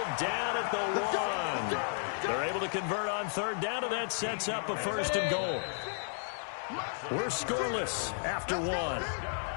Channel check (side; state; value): right; silent; 56 dB below the other